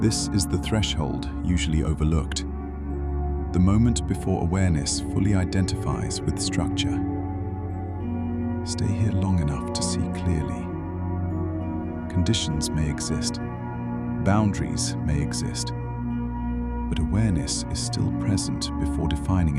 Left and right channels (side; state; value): both; identical; correlation 1.00